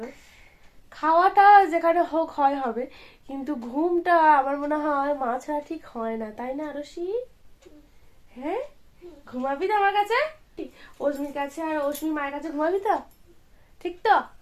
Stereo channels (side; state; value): both; identical; correlation 1.00